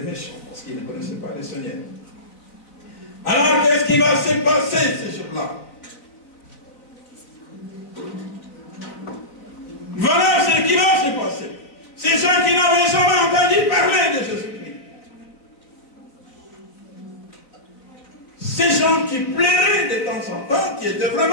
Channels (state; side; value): late; right; 3.9 ms